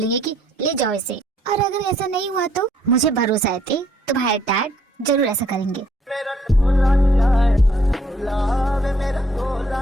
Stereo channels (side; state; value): both; normal; correlation 0.66